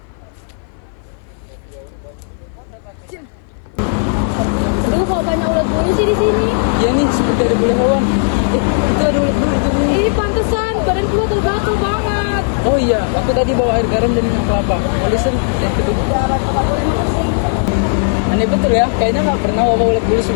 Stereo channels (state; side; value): silent; right; 57 dB below the other